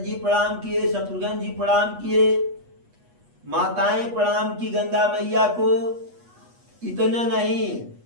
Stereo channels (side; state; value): left; late; 8.3 ms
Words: प्रणाम किए, शत्रुघ्न जी प्रणाम किए, माताएं प्रणाम की गंगा मैया को। इतना नहीं,